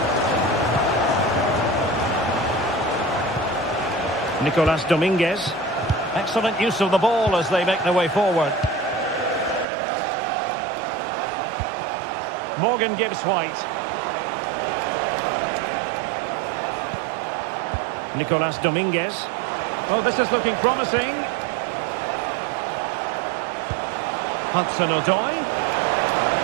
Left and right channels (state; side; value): drops out; left; at 9.7 s